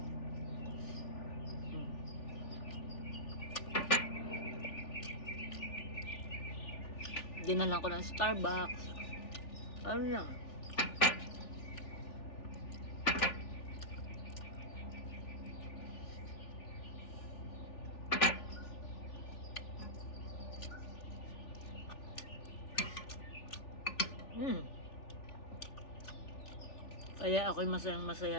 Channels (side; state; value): right; late; 3.4 ms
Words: Dinalan ko ng Starbucks. Ano lang, kaya ako'y masayang masaya